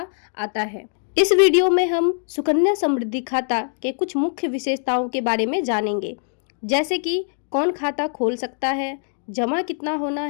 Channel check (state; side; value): silent; right; digital silence